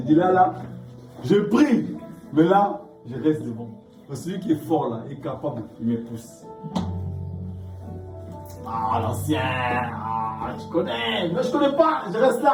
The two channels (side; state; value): both; identical; correlation 1.00